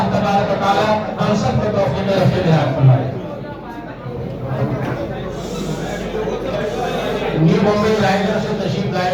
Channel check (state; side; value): identical; both; correlation 1.00